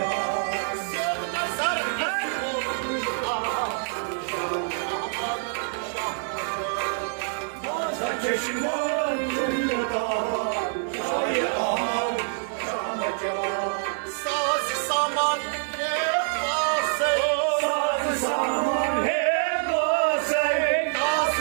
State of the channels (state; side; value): silent; left; 56 dB below the other